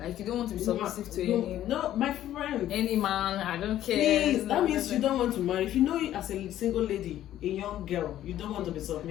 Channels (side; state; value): right; quieter; 12.5 dB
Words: Like you don't want to be submissive to No, my friend. any man. I don't care. Please, that means you don't want to marry. If you know it as a single lady, a young girl, you don't want to be